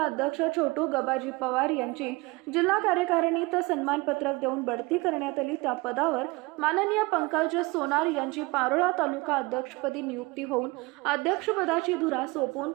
अध्यक्ष छोटू गबाजी पवार यांची जिल्हा कार्यकारिणीत सन्मानपत्रक देऊन बढती करण्यात आली। त्या पदावर माननीय पंकज सोनार यांची पारोळा तालुका अध्यक्षपदी नियुक्ती होऊन अध्यक्षपदाची धुरा सोपवून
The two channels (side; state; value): left; quieter; 24.3 dB